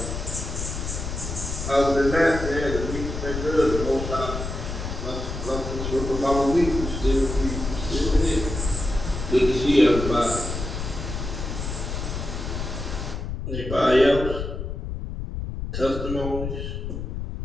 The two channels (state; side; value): noise; left; rumble, 5 dB below the sound